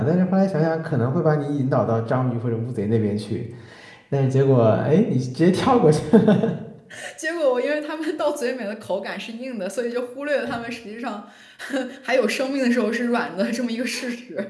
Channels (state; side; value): identical; both; correlation 1.00